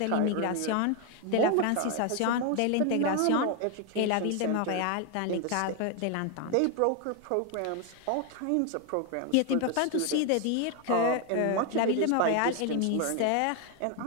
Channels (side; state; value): both; different; correlation 0.01